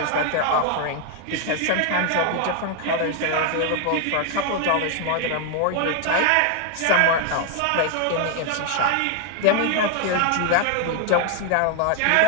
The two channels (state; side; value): different; both; correlation 0.00